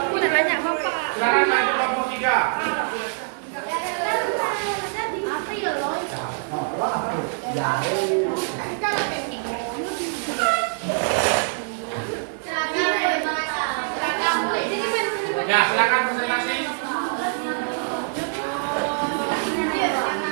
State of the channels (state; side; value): silent; left; 58 dB below the other